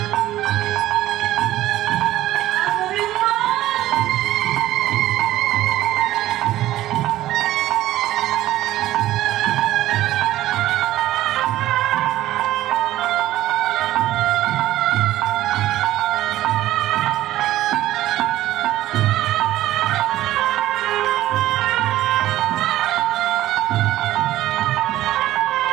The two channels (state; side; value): quieter; left; 14.7 dB